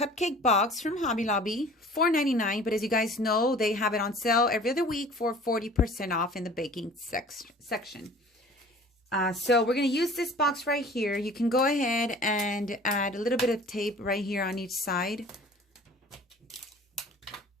box from Hobby Lobby, $4.99. But as you guys know, they have it on sale every other week for 40% off in the baking section. So we're going to use this box right here. You can go ahead and add a little bit of tape right here on each side.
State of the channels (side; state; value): both; normal; correlation 0.46